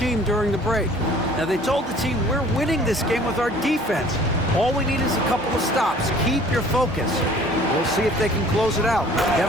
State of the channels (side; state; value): both; normal; correlation 0.52